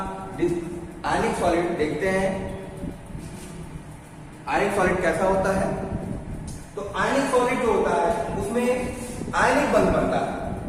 आयनिक सॉलिड देखते हैं। आयनिक सॉलिड कैसा होता है। तो आयनिक सॉलिड जो होता है उसमें आयनिक बंध बनता है।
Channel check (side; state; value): both; identical; correlation 1.00